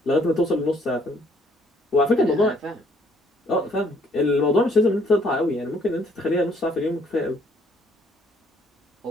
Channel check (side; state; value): both; normal; correlation 0.64